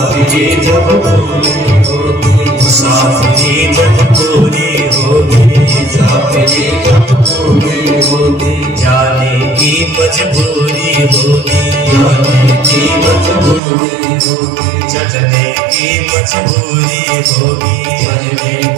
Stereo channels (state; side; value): drops out; left; at 13.6 s